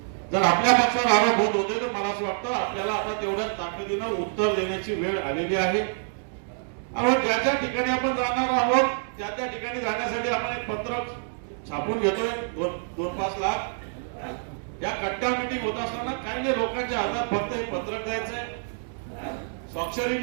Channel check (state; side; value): silent; left; digital silence